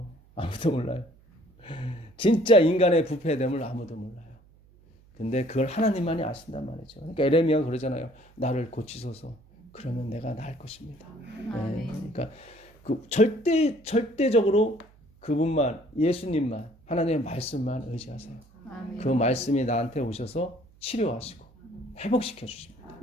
아무도 몰라요. 진짜 인간의 부패됨을 아무도 몰라요. 근데 그걸 하나님만이 아신단 말이죠. 그러니까 에레미야가 그러잖아요. 나를 고치소서. 그러면 내가 나을 것입니다. 예. 그러니까 그 절대적으로 그분만, 예수님만, 하나님의 말씀만 의지하세요. 그 말씀이 나한테 오셔서 치료하시고 회복시켜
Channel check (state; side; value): noise; right; hum, 28 dB below the sound